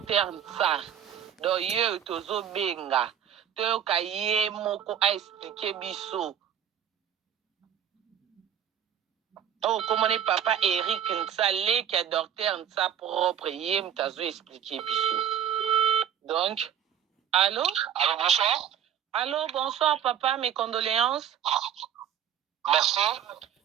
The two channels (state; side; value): quieter; left; 9.3 dB